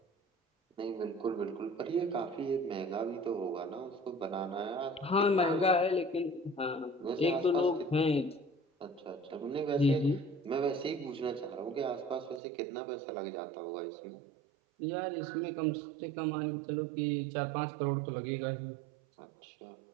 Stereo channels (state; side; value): drops out; left; at 12.4 s